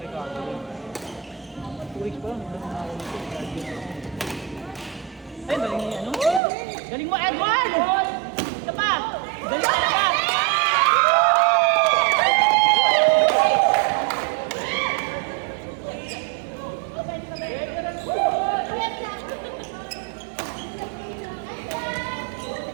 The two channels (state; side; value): drops out; left; at 6.4 s